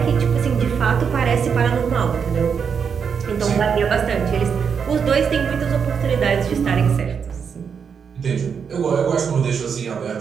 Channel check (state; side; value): quieter; left; 6.6 dB